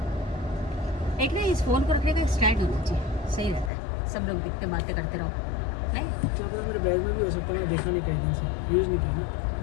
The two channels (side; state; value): right; drops out; at 3.7 s